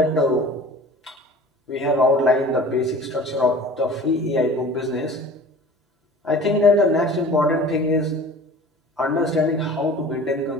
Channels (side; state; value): both; normal; correlation 0.43